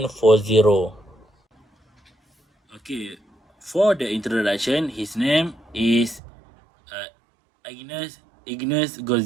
Okay, for the introduction, his name is Ignaz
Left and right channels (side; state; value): left; drops out; at 6.2 s